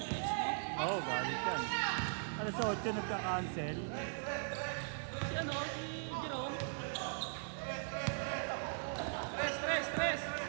Oo, galit yan. Alas 8 nagka-cancel. Si ano? Si Jerome? Tres.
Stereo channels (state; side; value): silent; left; digital silence